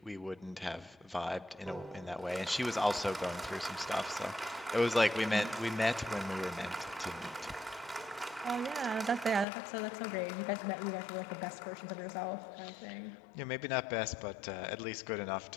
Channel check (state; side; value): drops out; right; at 9.5 s